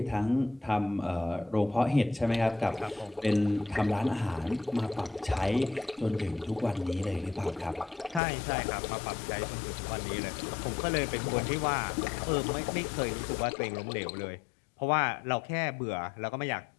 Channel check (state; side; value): drops out; right; at 8.2 s